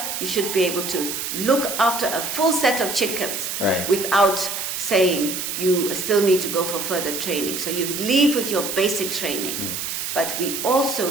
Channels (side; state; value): right; noise; hiss, 4 dB below the sound